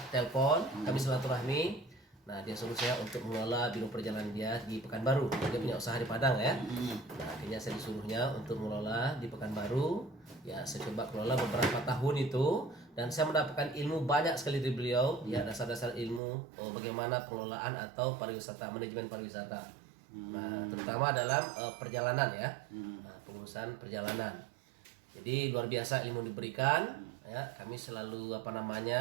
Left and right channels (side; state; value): left; drops out; at 16.2 s